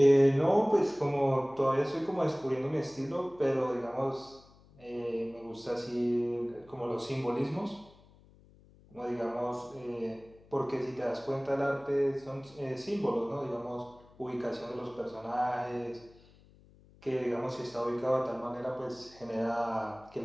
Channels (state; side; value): noise; left; hum, 26 dB below the sound